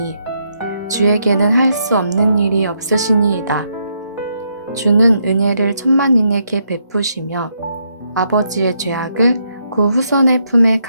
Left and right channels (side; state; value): both; inverted; correlation -0.77